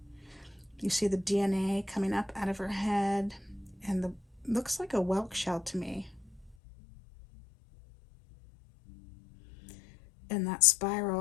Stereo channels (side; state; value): right; drops out; at 6.6 s